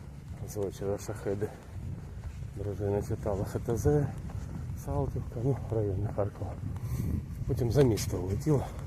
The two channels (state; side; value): identical; both; correlation 1.00